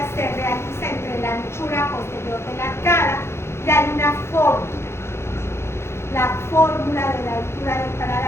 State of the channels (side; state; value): right; late; 0.12 ms